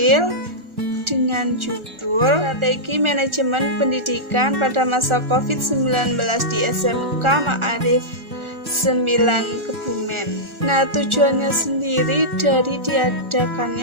dengan judul Strategi Manajemen Pendidikan pada Masa COVID-19 di SMK Ma'arif 9 Kebumen. Nah, tujuannya sendiri dari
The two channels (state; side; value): late; left; 1.4 ms